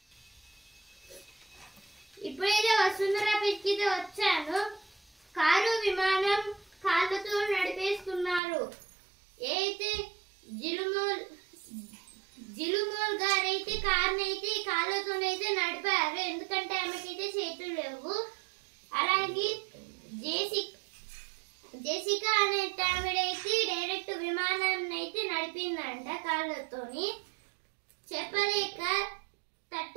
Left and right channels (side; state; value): left; drops out; at 8.4 s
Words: ఇప్పుడైతే వసుంధరాపేటకి వచ్చాను. కారు విమానం కాళ్ళతో నడిపేస్తున్నారు. అయితే జిలుమోల్ గారైతే కారునైతే కాళ్ళతోనైతే నడిపారు, ఎందుకంటే ఆమెకైతే చేతులు లేవు. అలాగే జెసికా అనే ఆవిడైతే డైరెక్ట్ విమానాన్ని అయితే నడిపిందంట కాళ్ళతోని. చెప్పలేక